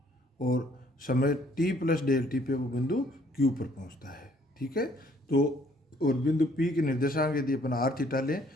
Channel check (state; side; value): normal; both; correlation 0.63